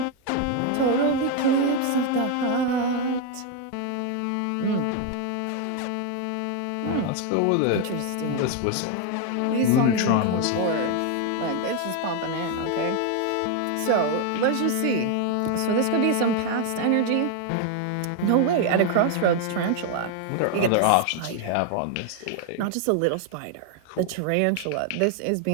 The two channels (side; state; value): both; different; correlation 0.01